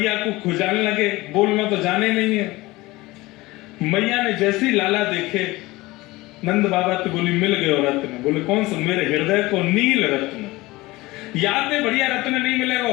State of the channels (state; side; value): quieter; right; 20.4 dB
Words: को खुजान लगे, बोलना तो जाने नहीं है। मैया ने जैसे ही लाला देखे, नंद बाबा तो बोली मिल गए रत्न। बोले कौन सा? मेरे हृदय को नील रत्न, याद है बढ़िया रत्न नहीं मिलेगा।